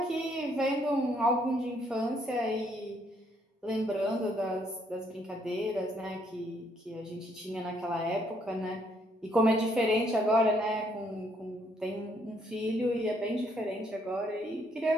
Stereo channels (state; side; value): normal; both; correlation 0.70